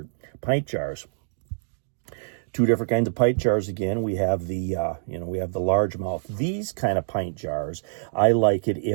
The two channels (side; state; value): left; silent; digital silence